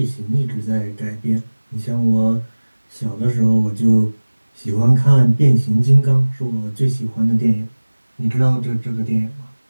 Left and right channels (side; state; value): both; inverted; correlation -1.00